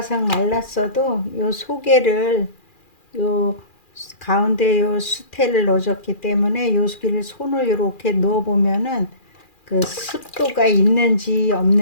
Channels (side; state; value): right; late; 2.4 ms